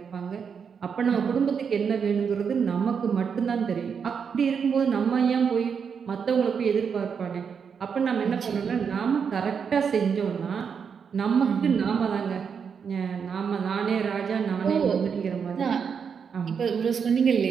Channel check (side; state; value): left; quieter; 6.6 dB